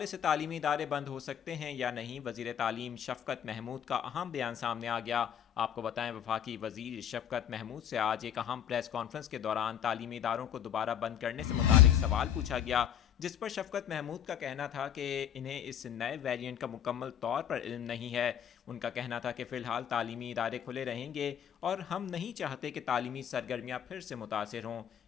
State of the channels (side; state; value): right; quieter; 9.4 dB